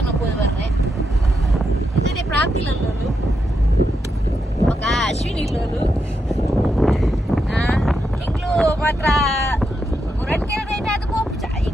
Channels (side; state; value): both; normal; correlation 0.84